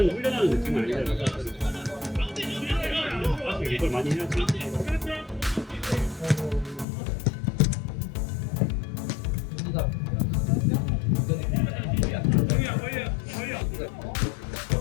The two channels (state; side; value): drops out; right; at 6.9 s